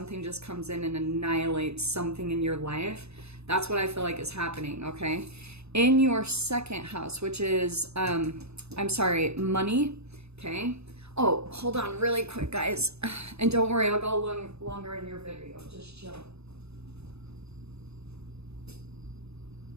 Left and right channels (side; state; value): left; late; 0.79 ms